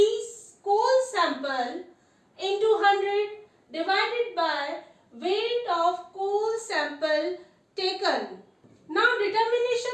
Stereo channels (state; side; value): identical; both; correlation 1.00